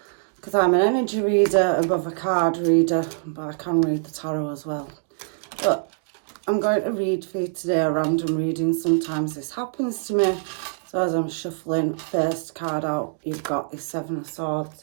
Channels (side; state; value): left; silent; digital silence